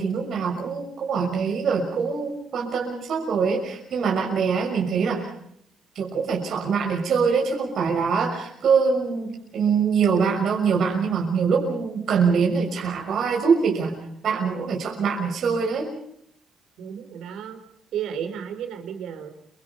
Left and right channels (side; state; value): left; quieter; 5.4 dB